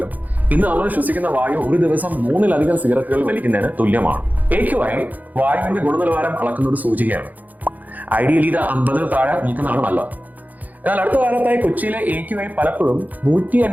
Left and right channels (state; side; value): late; left; 0.081 ms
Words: ഇന്ന് നമ്മൾ ശ്വസിക്കുന്ന വായു ഒരു ദിവസം 3-ലധികം സിഗരറ്റുകൾ വലിക്കുന്നതിന് തുല്യമാണ്. AQI വായുവിന്റെ ഗുണനിലവാരം അളക്കുന്ന ഒരു സൂചികയാണ്. ഐഡിയലി ഇത് 50 താഴെ നിൽക്കുന്നതാണ് നല്ലത്. എന്നാൽ അടുത്ത കാലത്തായി കൊച്ചിയിലെ AQI പലപ്പോഴും